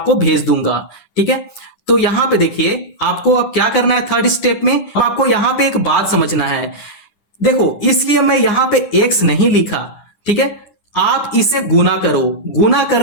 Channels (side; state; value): right; late; 9.9 ms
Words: भेज दूंगा, ठीक है। तो यहां पे देखिए आपको अब क्या करना है, थर्ड स्टेप में अब आपको यहां पे एक बात समझना है। देखो इसलिए मैं यहां पे x नहीं लिखा, ठीक है। आप इसे गुना करो, गुना